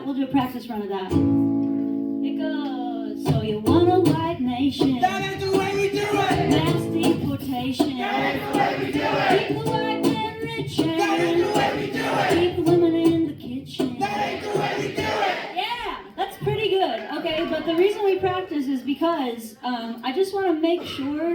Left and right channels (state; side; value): identical; both; correlation 1.00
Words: a practice run of that. It goes, so you want a white nation. That ain't the way we do it. Mass deportation. That ain't the way we do it. Keep the white man rich and That ain't the way we do it. keep the women in the kitchen. That ain't the way we do it. Yeah, that's pretty good. Okay, but the reason we practice is because I just want to make